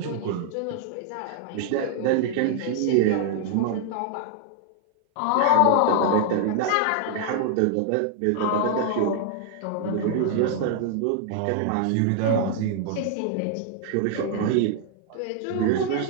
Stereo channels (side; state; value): both; different; correlation 0.00